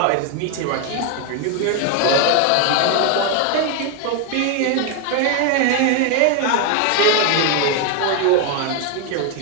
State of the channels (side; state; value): both; different; correlation 0.01